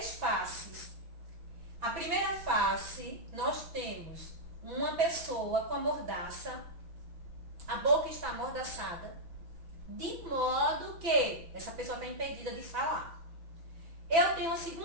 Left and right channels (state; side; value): late; left; 6.0 ms